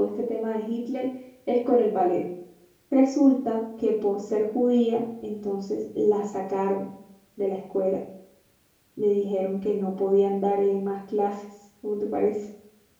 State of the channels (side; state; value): both; identical; correlation 1.00